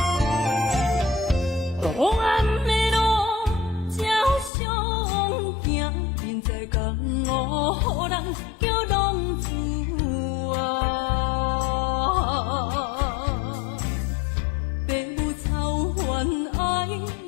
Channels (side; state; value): right; drops out; at 4.5 s